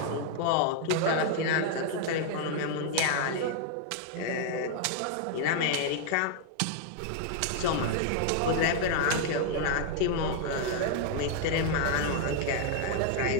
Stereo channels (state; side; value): different; both; correlation 0.00